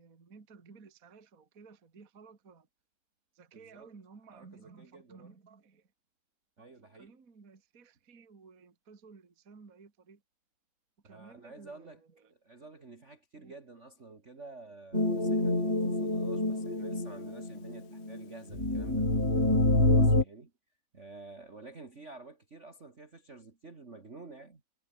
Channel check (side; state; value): left; late; 3.5 ms